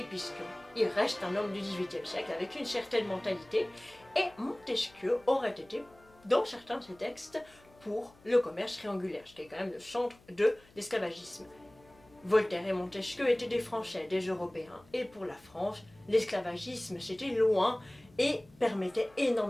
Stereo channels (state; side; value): noise; left; hum, 27 dB below the sound